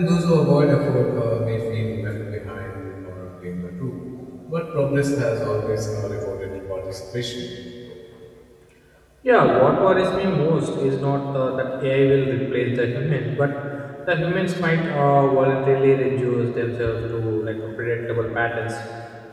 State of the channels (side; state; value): both; identical; correlation 1.00